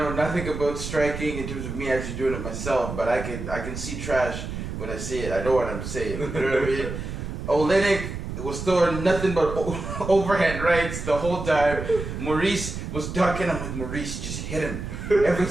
nothing about striking in terms of me actually doing it myself, but I can see trash when I see it. I know what I'm saying. You know what I mean? Oleinik was throwing nothing but overhand rights the whole time. Maurice was ducking. I'm like, Maurice, just hit him. Every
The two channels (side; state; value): right; noise; rumble, 6 dB below the sound